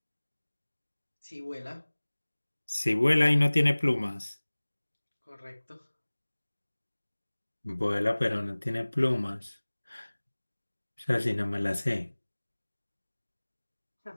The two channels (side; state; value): both; inverted; correlation -1.00